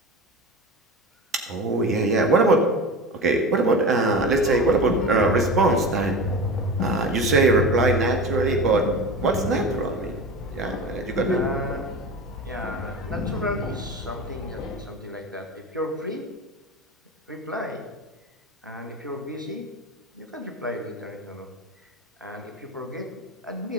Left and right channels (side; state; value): both; normal; correlation 0.30